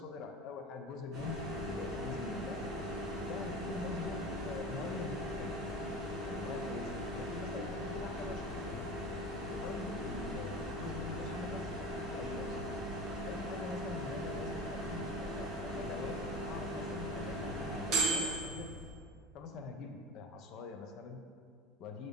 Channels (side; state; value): both; normal; correlation 0.32